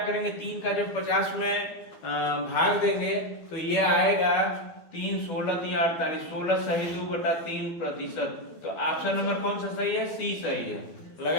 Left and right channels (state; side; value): late; right; 12 ms